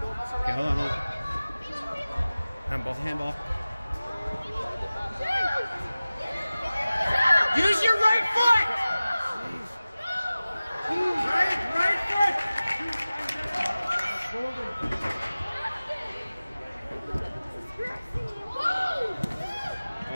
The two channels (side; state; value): both; inverted; correlation -0.97